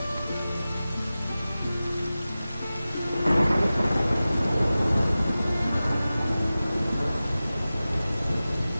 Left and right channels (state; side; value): inverted; both; correlation -0.96